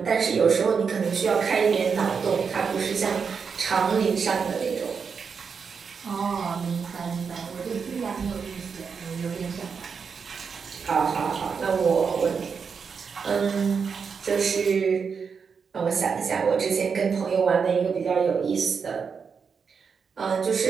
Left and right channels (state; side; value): quieter; left; 5.9 dB